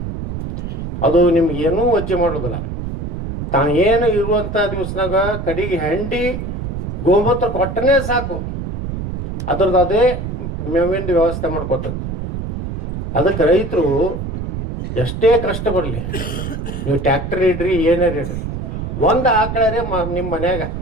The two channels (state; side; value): noise; right; rumble, 5 dB below the sound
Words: ಅದು ನಿಮ್ಗೆ ಏನೂ ವಜ್ಜೆ ಮಾಡೋದಿಲ್ಲ. ತಾನು ಏನು ಇರುವಂಥ ದಿವಸನಾಗ ಕಡೆಗೆ ಹೆಂಡಿ ಗೋಮೂತ್ರ ಕೊಟ್ಟನೇ ಸಾಕು, ಅದ್ರದ್ದು ಅದೇ ಮೇವಿಂದ ವ್ಯವಸ್ಥೆ ಮಾಡ್ಕೊತದ. ಅದಕ್ಕೆ ರೈತರು ಎಷ್ಟೇ ಕಷ್ಟ ಬರಲಿ, ನೀವು ಟ್ಯಾಕ್ಟರ್ ಇಡ್ರಿ ಏನಾರು ಇಡ್ರಿ, ಒಂದು ಆಕಳರೇ ನಿಮ್ಮ ಮನ್ಯಾಗ